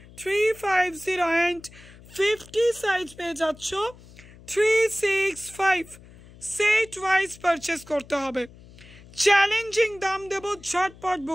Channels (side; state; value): left; noise; hum, 22 dB below the sound